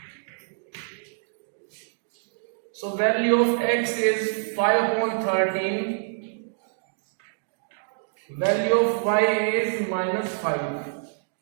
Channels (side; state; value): left; silent; digital silence